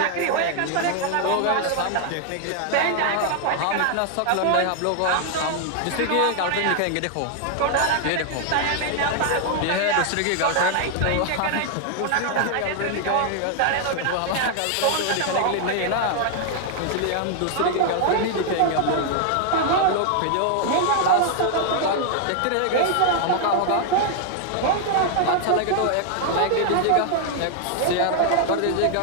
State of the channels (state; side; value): different; both; correlation 0.00